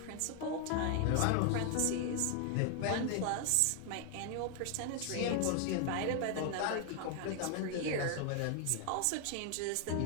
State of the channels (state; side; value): different; both; correlation 0.00